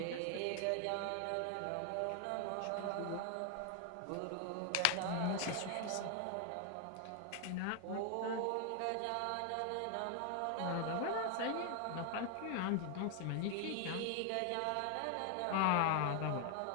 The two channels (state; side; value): different; both; correlation 0.00